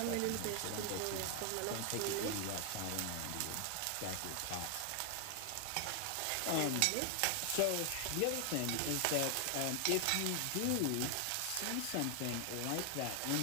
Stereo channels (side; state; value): both; different; correlation 0.00